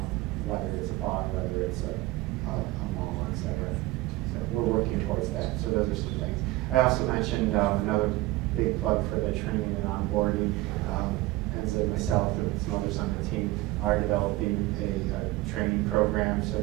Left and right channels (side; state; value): left; quieter; 18.8 dB